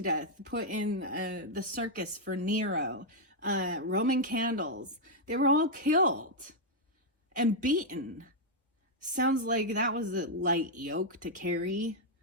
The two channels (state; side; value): normal; both; correlation -0.03